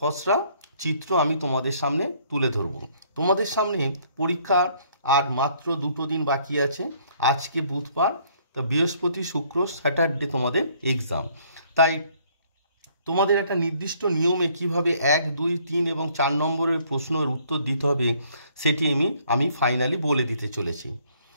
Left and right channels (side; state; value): both; inverted; correlation -0.63